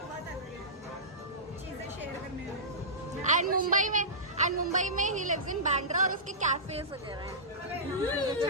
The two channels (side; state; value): both; normal; correlation -0.20